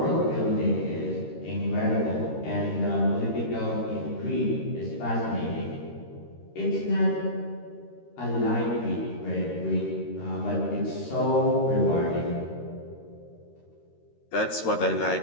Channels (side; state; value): right; late; 13 ms